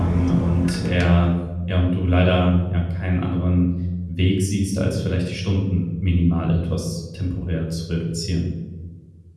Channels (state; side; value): identical; both; correlation 1.00